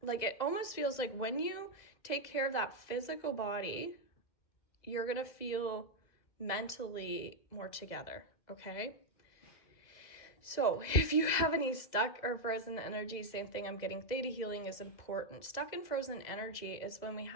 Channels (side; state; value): right; late; 2.0 ms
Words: like it almost feels like when you take care of that physical body, you're going to feel mentally more together, okay? So if you have any stuck or frozen energy, same thing, I'm getting theta healing is important. Stuck and frozen energy is when we